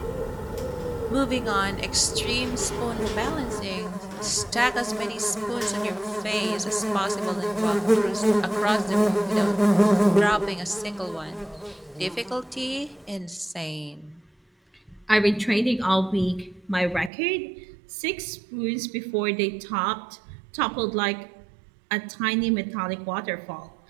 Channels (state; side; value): drops out; left; at 17.1 s